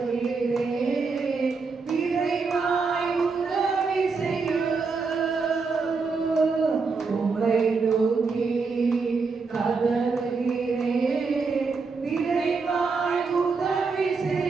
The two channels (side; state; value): left; quieter; 4.6 dB